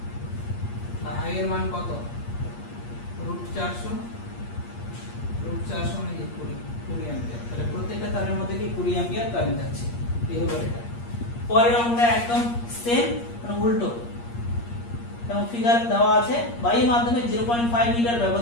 I এর মান কত √400, √400 মানে কি 20 অ্যাম্পিয়ার। তাহলে প্রত্যেকটা তারের মধ্যে কি 20 অ্যাম্পিয়ার কারেন্ট আছে, এই হলো এটা। পরের অঙ্কটা একদম সেম, মানে উল্টো, এবং ফিগার দেওয়া আছে বায়ু মাধ্যমে 0.5 মিটার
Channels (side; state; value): right; late; 8.5 ms